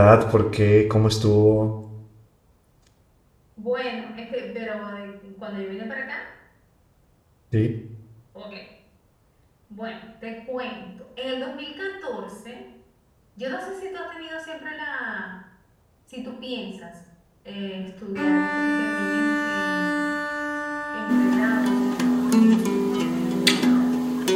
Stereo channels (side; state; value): both; identical; correlation 1.00